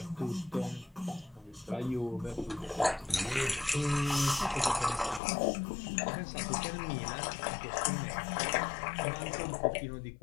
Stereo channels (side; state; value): right; drops out; at 5.2 s